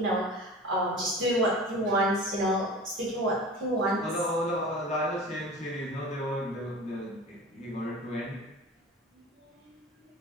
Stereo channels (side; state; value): both; normal; correlation 0.37